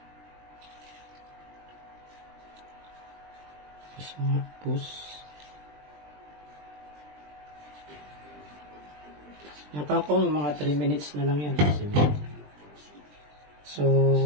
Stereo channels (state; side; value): late; left; 20 ms